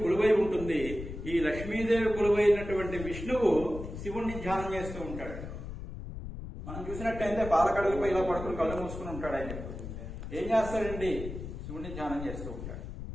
కొలువై ఉంటుంది. ఈ లక్ష్మీదేవి కొలువైనటువంటి విష్ణువు శివుణ్ణి ధ్యానం చేస్తూ ఉంటాడు. మనం చూసినట్టయితే బాలకడుగుపై ఇలా పడుకుని కళ్ళు మూసుకుని ఉంటాడు. ఆయన ఏం చేస్తాడండి? శివుణ్ణి ధ్యానం చేస్తూ ఉంటాడు.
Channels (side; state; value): left; noise; rumble, 9 dB below the sound